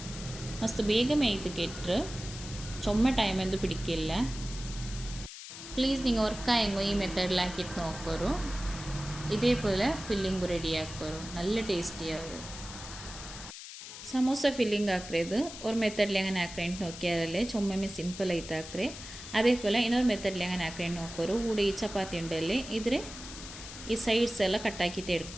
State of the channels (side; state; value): left; noise; hiss, 12 dB below the sound